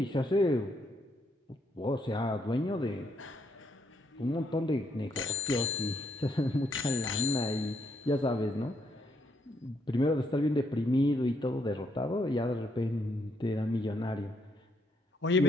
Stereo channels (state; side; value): normal; both; correlation 0.74